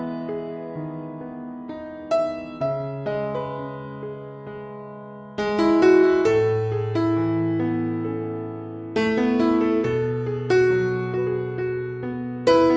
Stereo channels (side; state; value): both; identical; correlation 1.00